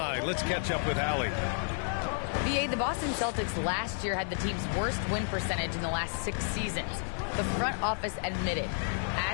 let's catch up with Allie. The Boston Celtics last year had the team's worst win percentage in the last 6 seasons. The front office admitted,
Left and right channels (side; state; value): right; silent; 57 dB below the other